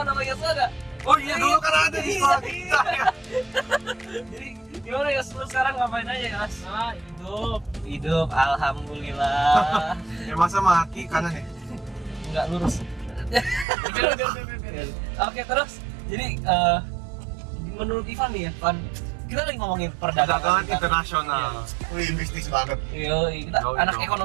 sama Yosua gak? Oh iya dulu kan ada di sekolah kita ya. Jadi gimana Yos? Lu sekarang ngapain aja Yos? Hidup. Alhamdulillah. Ya masa mati kanan ya? Enggak lurus. Oke, terus jadi menurut Ivan nih ya, Van, kita lagi ngomongin Perdagangan internasional. Wih, bisnis banget. Kita Yoi anak dong.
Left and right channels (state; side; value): drops out; left; at 13.7 s